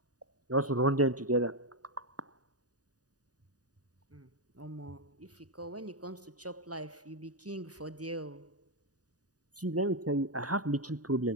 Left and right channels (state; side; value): late; left; 0.68 ms